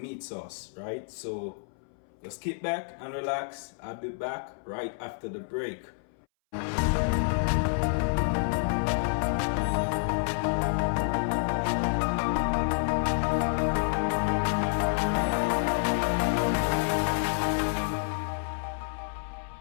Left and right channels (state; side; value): silent; right; 59 dB below the other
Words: meat sauce, right? So just kick back and relax. I'll be back right after the break.